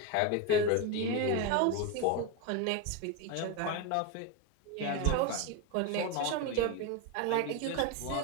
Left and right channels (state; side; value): different; both; correlation 0.03